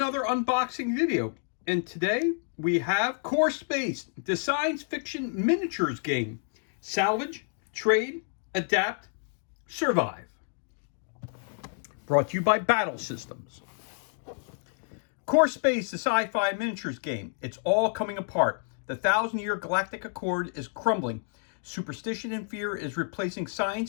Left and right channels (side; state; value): right; silent; 58 dB below the other